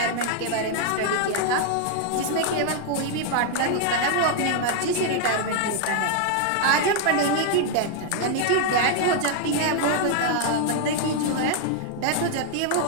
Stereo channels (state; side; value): different; both; correlation 0.00